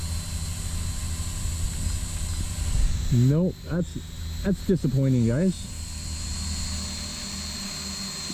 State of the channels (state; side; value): identical; both; correlation 1.00